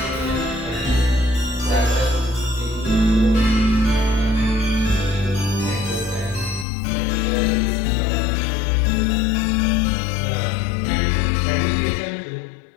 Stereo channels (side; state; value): right; drops out; at 6.7 s